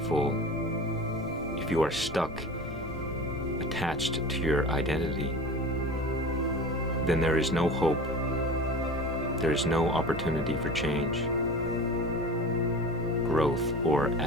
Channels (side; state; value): left; noise; rumble, 15 dB below the sound